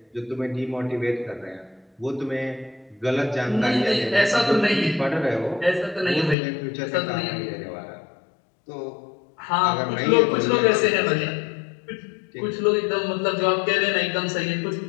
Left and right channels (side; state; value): right; drops out; at 6.4 s